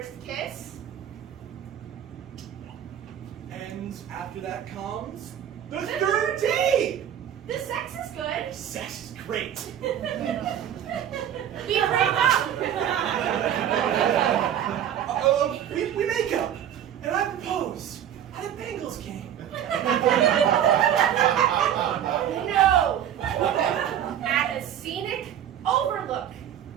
kiss. And after that comes the third date. The sex is good. Sex is great. We break up. We make up, and I propose at a Bengals game. No. At a scenic overlook.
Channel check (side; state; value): left; quieter; 10.1 dB